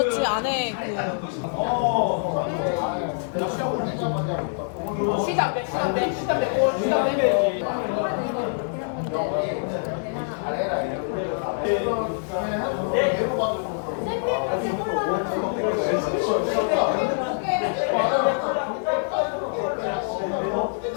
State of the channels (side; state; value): right; silent; digital silence